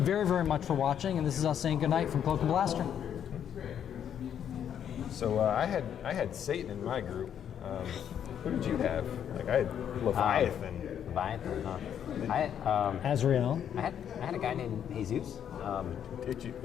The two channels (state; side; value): quieter; right; 9.1 dB